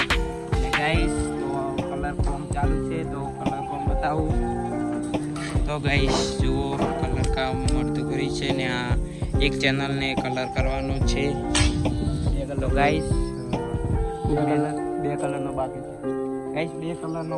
ને ગાઈસ તો કલર કોમ ચાલુ છે। તો કલર કોમ બતાવું તો ગાઈસ જુઓ કલર કામ મળતું કરી છે ને આ એક ચેનલને કલર કરવાનો છે। તો ગાઈસ બે કલરનો બાકી છે ગાઈસ, 2 કલરનો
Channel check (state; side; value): identical; both; correlation 1.00